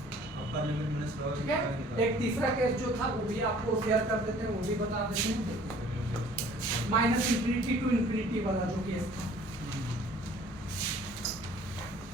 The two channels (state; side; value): normal; both; correlation 0.53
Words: अपर लिमिट माइनस लोअर ठीक है? एक तीसरा केस जो था वो भी आपको शेयर कर देते हैं, वो भी बता देते हैं। माइनस इंफिनिटी टू इंफिनिटी वाला जो केस था,